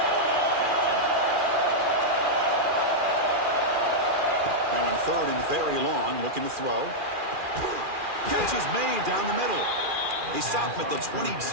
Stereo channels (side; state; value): left; late; 2.4 ms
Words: Now in third and very long, looking to throw. Catch is made down the middle. They stop him at the